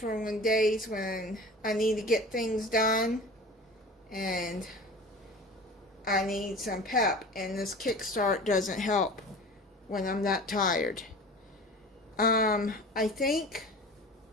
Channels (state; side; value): normal; both; correlation 0.38